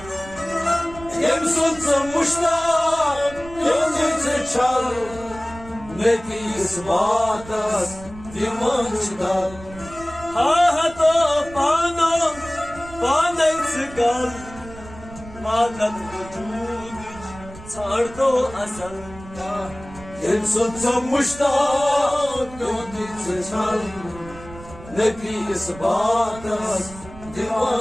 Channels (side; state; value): right; noise; rumble, 17 dB below the sound